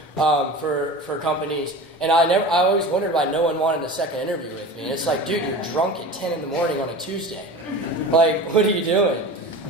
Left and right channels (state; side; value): normal; both; correlation 0.34